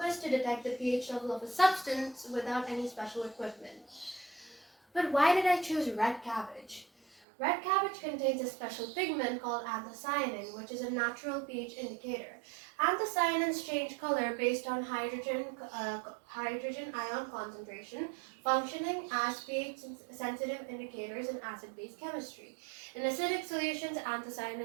us to detect the pH level of a substance without any special equipment. But why did I choose red cabbage? Red cabbage contains a special pigment called anthocyanin, which is a natural pH indicator. Anthocyanins change color based on hydrogen ion concentration, functioning as pH-sensitive indicators in acid-base chemistry. In acidic solutions,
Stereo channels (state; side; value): drops out; left; at 7.2 s